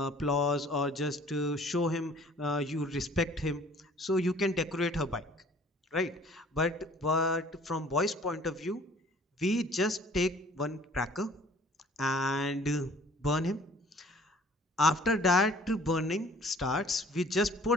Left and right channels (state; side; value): normal; both; correlation 0.53